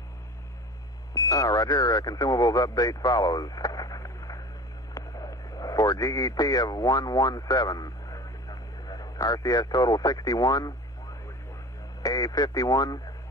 Roger. Consumables update follows. For GET of 117, RCS total 61, A 51,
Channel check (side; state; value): both; normal; correlation 0.37